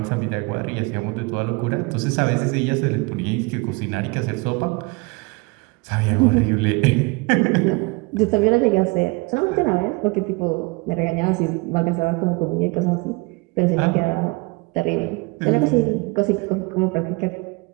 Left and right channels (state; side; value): quieter; left; 26.8 dB